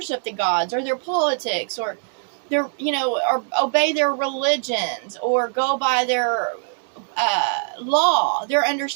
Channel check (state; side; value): silent; left; 57 dB below the other